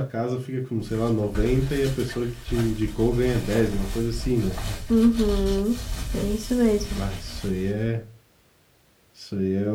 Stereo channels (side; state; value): both; identical; correlation 1.00